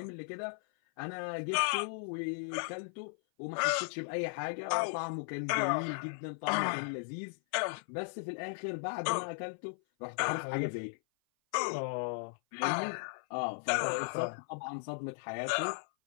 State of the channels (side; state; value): right; silent; 54 dB below the other